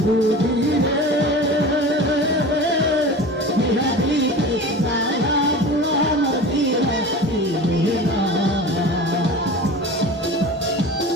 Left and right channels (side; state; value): both; normal; correlation 0.35